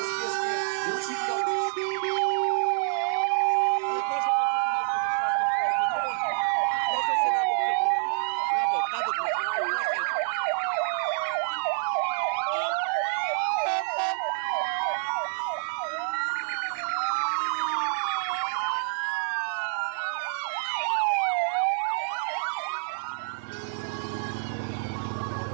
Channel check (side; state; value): left; silent; 56 dB below the other